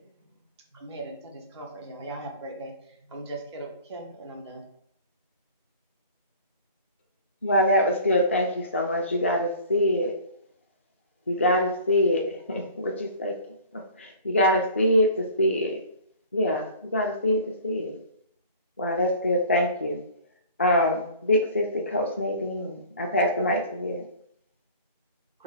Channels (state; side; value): inverted; both; correlation -0.44